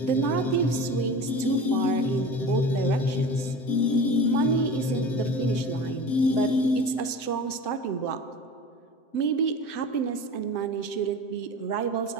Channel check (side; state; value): right; late; 7.7 ms